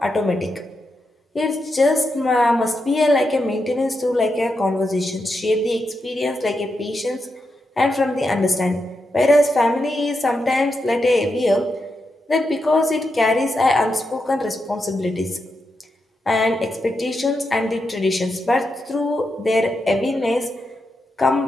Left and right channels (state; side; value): normal; both; correlation 0.86